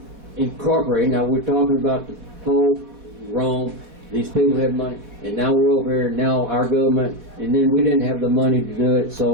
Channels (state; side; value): late; left; 4.1 ms